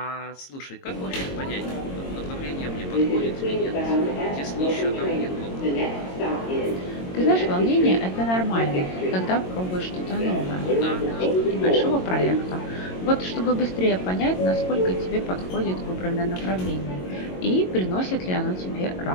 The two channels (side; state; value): right; late; 22 ms